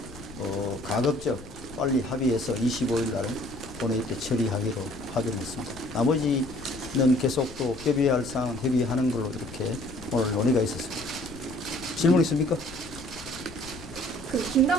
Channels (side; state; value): left; noise; rumble, 17 dB below the sound